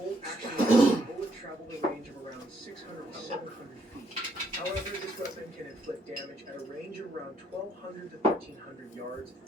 action, the bullet traveled a range of around 600 to 700 feet. However, this weapon can inflict damage at a range of around 1,200 to 1,300 yards.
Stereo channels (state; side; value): normal; both; correlation 0.70